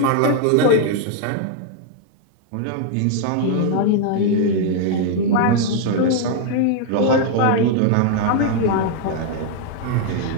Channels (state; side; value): different; both; correlation 0.00